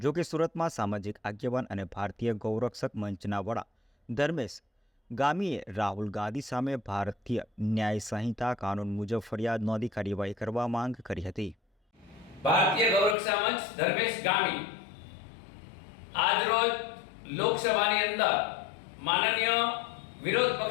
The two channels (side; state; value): right; drops out; at 13.2 s